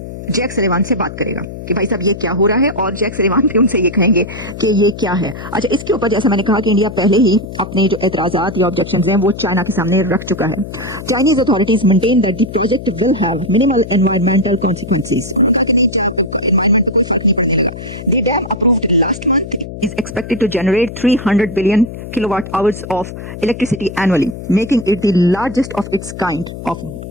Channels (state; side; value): noise; left; hum, 11 dB below the sound